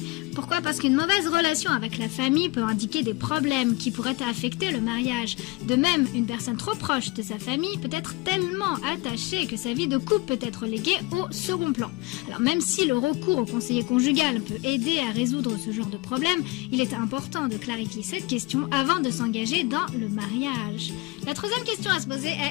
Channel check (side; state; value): right; quieter; 23.0 dB